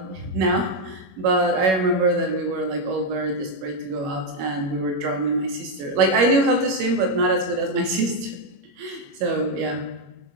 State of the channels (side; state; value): left; late; 21 ms